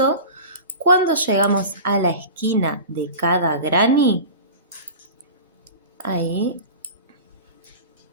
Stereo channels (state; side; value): inverted; both; correlation -0.34